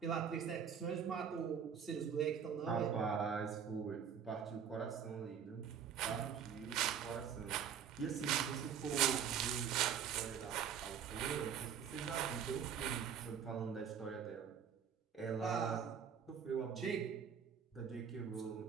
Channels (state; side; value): quieter; left; 7.8 dB